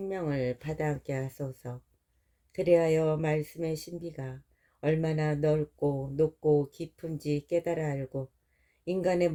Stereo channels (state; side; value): identical; both; correlation 1.00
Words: 받아안게 하소서. 그리하여 말씀의 신비가 얼마나 넓고 높고 깊은지 깨달아 알고, 인간의